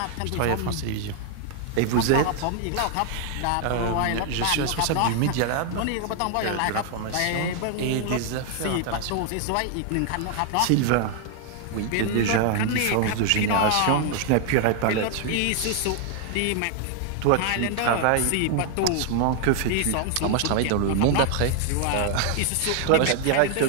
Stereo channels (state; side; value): different; both; correlation 0.00